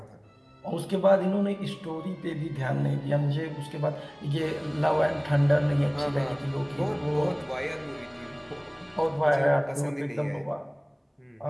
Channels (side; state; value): both; identical; correlation 1.00